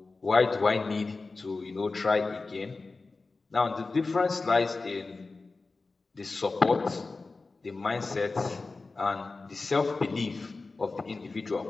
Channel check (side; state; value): right; quieter; 3.8 dB